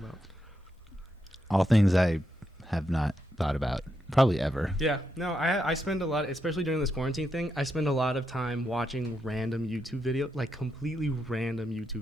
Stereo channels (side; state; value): both; normal; correlation 0.83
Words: All things I have not thought about probably ever. Yeah, no, I spend a lot, especially during this quarantine thing, I spend a lot of time watching random YouTube videos, like completely random YouTube